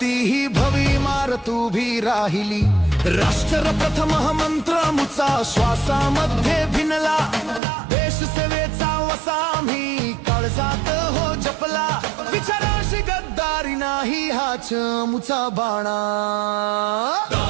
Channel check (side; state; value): left; drops out; at 7.6 s